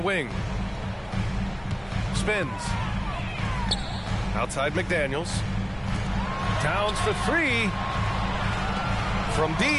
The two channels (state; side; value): identical; both; correlation 1.00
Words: Spins. Outside McDaniels. Towns for 3. From